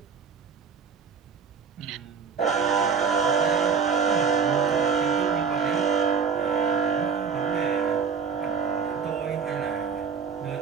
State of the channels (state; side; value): quieter; left; 6.0 dB